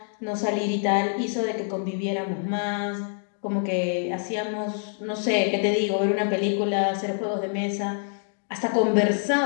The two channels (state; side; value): silent; right; digital silence